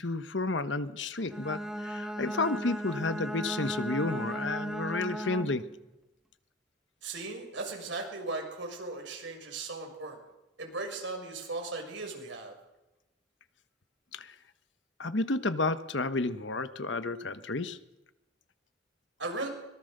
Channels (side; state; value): both; normal; correlation 0.30